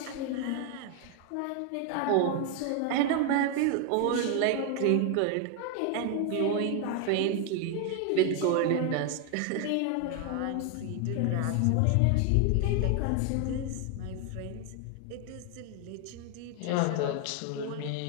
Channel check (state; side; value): different; both; correlation 0.01